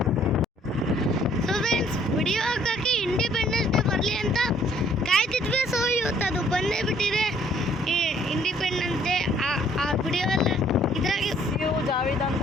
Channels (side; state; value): both; normal; correlation 0.62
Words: ಸೊ ಫ್ರೆಂಡ್ಸ್ ವಿಡಿಯೋ ಹಾಕೋಕ್ಕೆ ಇಂಡಿಪೆಂಡೆನ್ಸ್ ಡೇ ಬರಲಿ ಅಂತ ಕಾಯ್ತಿದ್ವಿ. ಸೊ ಇವತ್ತು ಅದು ಬಂದೇ ಬಿಟ್ಟಿದೆ, ಇಂಡಿಪೆಂಡೆನ್ಸ್ ಡೇ. ಆ ವಿಡಿಯೋ ಎಲ್ಲ ಇದ್ರಾಗೆ Javed